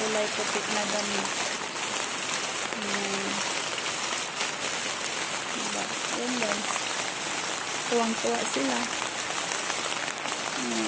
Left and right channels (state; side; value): identical; both; correlation 1.00